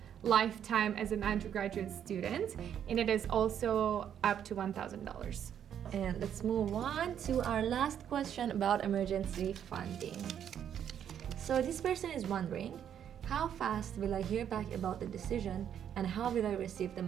lifetime as an undergraduate student, and it is also up to $1,000. And let's move on to our last question about emergency funding. So this person is wondering, how fast will I hear back about the decision and how will I receive the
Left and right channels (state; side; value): quieter; left; 9.3 dB